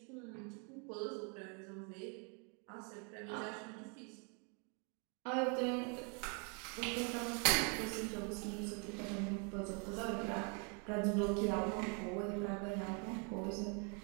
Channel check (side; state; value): left; quieter; 36.6 dB